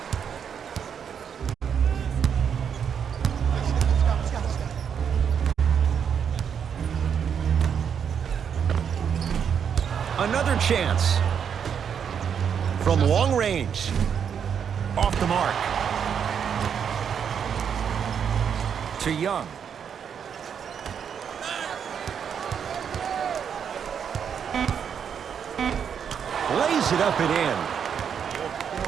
Another chance. From long range. Off the mark. To Young. Lays it up and in.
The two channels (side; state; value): left; quieter; 7.6 dB